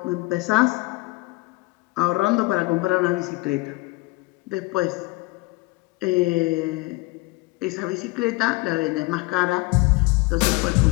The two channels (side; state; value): right; quieter; 23.1 dB